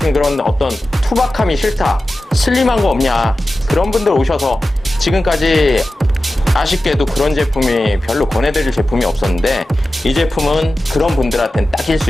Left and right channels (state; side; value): normal; both; correlation 0.94